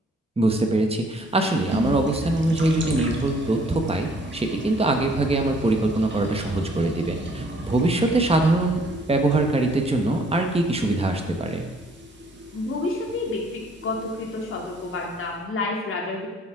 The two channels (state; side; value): normal; both; correlation 0.61